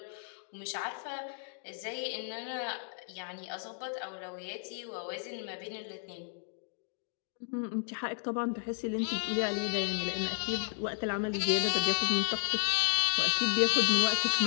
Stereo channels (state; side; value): silent; right; 56 dB below the other